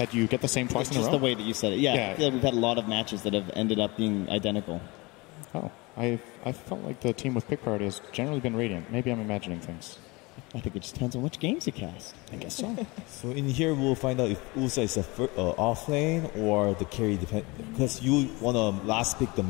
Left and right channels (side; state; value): right; quieter; 24.8 dB